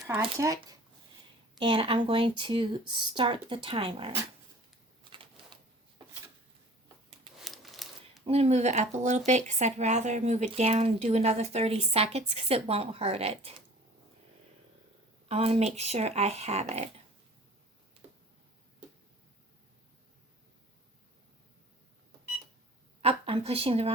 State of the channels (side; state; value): both; normal; correlation 0.46